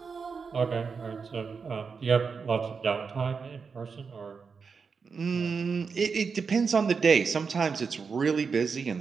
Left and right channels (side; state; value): left; quieter; 5.4 dB